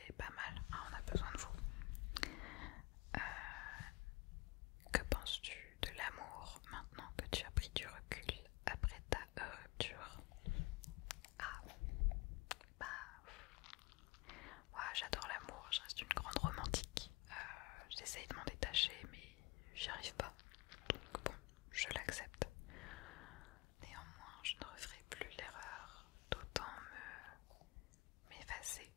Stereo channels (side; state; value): right; quieter; 23.2 dB